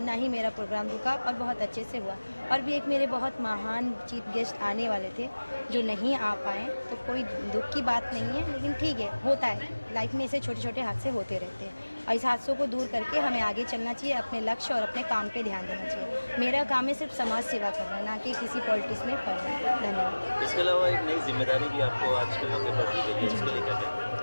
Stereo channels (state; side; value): inverted; both; correlation -1.00